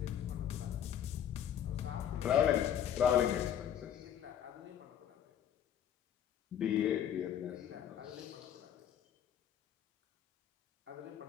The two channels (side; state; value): right; quieter; 9.8 dB